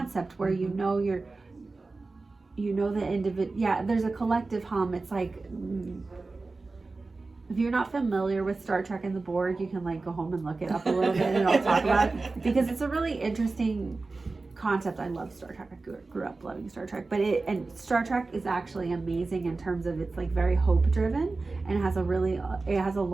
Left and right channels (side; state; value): left; quieter; 3.6 dB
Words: where you know the individual. Yeah, there's a collective hum. It's like, if you're not familiar with Star Trek and the Borg, you can like go home and look it up a little bit, and I'll talk about it, because it's a really interesting concept. I love Star Trek. I grew up loving Star Trek, and Star Trek is actually amazing in terms of it's like very hope driven, and it has a